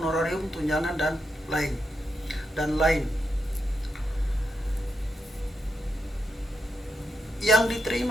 tunjangan dan lain. Yang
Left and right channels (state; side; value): normal; both; correlation 0.83